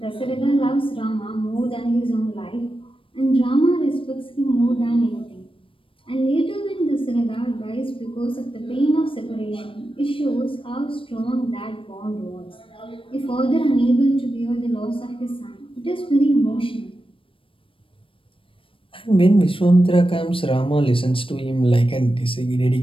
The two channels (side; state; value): right; late; 0.25 ms